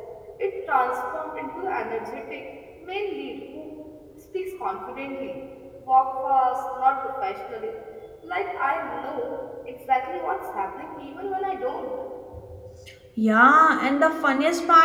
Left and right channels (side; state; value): both; identical; correlation 1.00